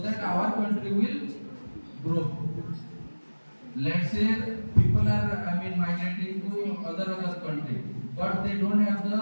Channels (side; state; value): both; inverted; correlation -1.00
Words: that our country will grow. Let's say people are migrating to other country, but they don't have